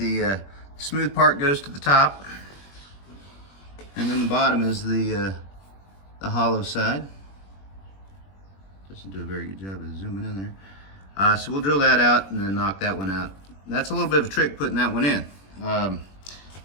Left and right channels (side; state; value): right; late; 21 ms